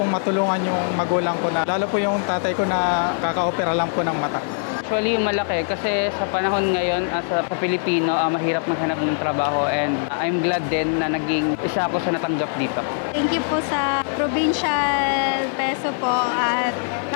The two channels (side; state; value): right; silent; digital silence